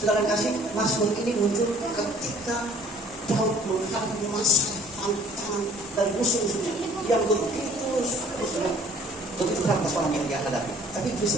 kasih, Mazmur ini muncul ketika Daud menghadapi masa tantangan dan musuh-musuhnya yang begitu berat persoalan yang dia hadapi. Tapi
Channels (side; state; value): both; normal; correlation 0.53